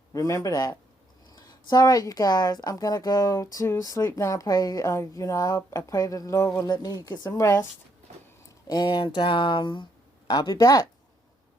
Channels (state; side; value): normal; both; correlation 0.73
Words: Remember that. So, all right, you guys, I'm going to go to sleep now. I pray, I pray that the Lord will let me get some rest. And I'll be back.